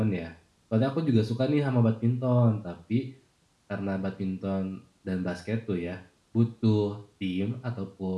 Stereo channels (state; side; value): identical; both; correlation 1.00